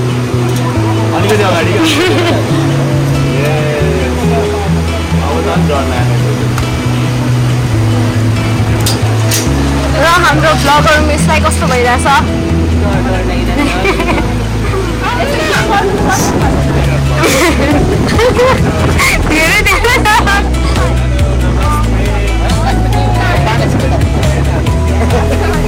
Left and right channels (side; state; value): both; identical; correlation 1.00